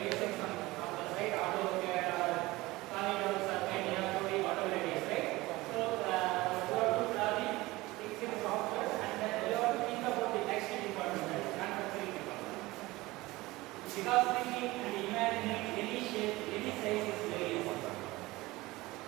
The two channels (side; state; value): left; quieter; 20.1 dB